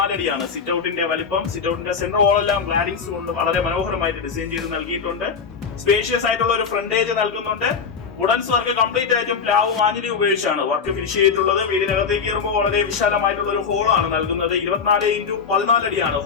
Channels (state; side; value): quieter; right; 5.9 dB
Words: അടിയാണ് സിറ്റ് ഔട്ടിന്റെ വലിപ്പം. സിറ്റ് ഔട്ടിന്റെ സെന്റർ വാൾ എല്ലാം ഗ്ലാഡിങ്സ് കൊണ്ട് വളരെ മനോഹരമായിട്ട് ഡിസൈൻ ചെയ്ത് നൽകിയിട്ടുണ്ട്. സ്പേഷ്യസ് ആയിട്ടുള്ള ഒരു ഫ്രണ്ടേജ് നൽകുന്നുണ്ട്. വുഡൻസ് വർക്ക് കംപ്ലീറ്റ് ആയിട്ടും പ്ലാവും ആഞ്ഞിലിയും ഉപയോഗിച്ചാണ് വർക്ക് ഫിനിഷ് ചെയ്തിട്ടുള്ളത്. വീടിനകത്തേക്ക് കയറുമ്പോൾ വളരെ വിശാലമായിട്ടുള്ള ഒരു ഹോളാണ് നൽകുന്നത്. 24x14 അടിയാണ്